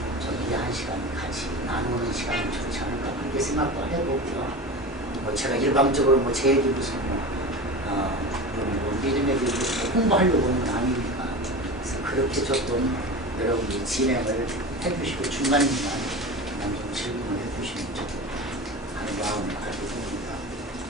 저희들이 한 시간 같이 나누는 시간이 좋지 않을까 그렇게 생각도 해보고요. 뭐 제가 일방적으로 뭐 제 얘기 무슨 믿음에 대해서 홍보하려고 하는 건 아니니까 그래서 그렇게 조금 여러분이 진행을 해주시고 중간중간 그냥 좀 질문을 해주시면 좋겠다 하는 마음을 가지고 있습니다.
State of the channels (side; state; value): both; normal; correlation 0.29